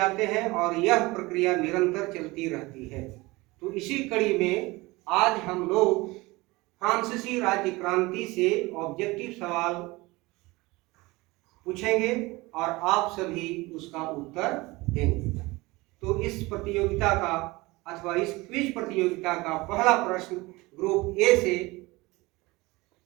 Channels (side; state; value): left; quieter; 22.1 dB